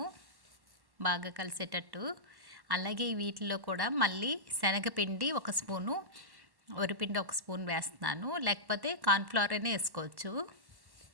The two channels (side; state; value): left; late; 1.1 ms